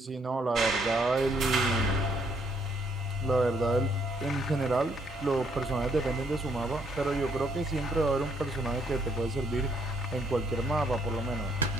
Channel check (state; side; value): normal; both; correlation 0.70